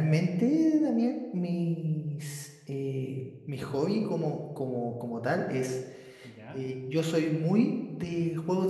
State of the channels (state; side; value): identical; both; correlation 1.00